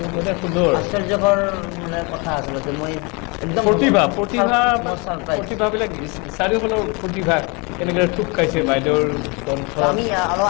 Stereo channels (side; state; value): right; quieter; 29.9 dB